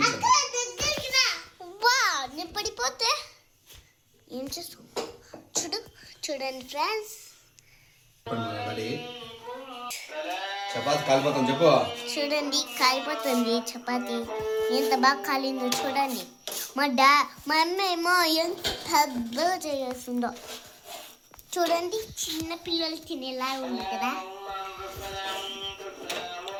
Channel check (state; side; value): identical; both; correlation 1.00